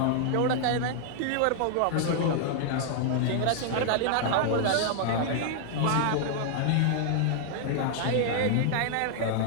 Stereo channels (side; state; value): both; different; correlation -0.01